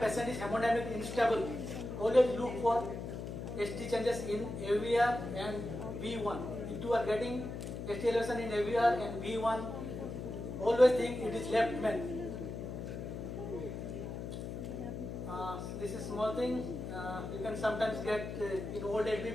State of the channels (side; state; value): left; noise; hum, 6 dB below the sound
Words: patient is hemodynamically unstable, always look for ST changes in AVR and V1. If you are getting ST elevation in AVR and V1, always think it is left main. This is small thing. You can sometimes get in old